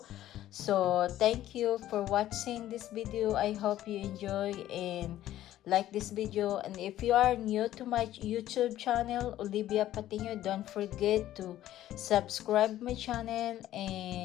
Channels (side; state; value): right; quieter; 13.3 dB